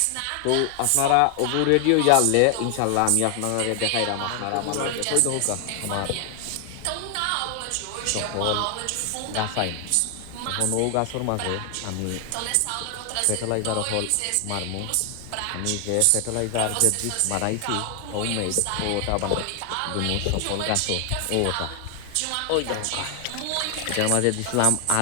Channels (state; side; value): different; both; correlation 0.00